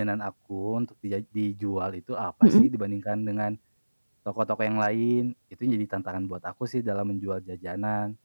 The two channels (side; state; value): both; inverted; correlation -1.00